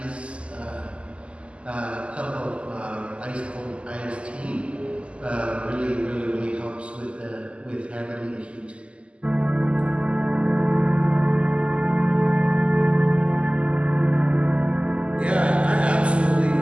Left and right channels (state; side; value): late; left; 0.056 ms